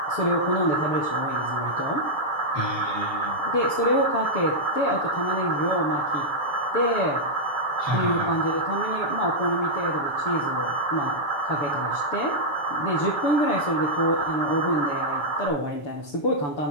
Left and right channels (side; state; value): right; late; 6.9 ms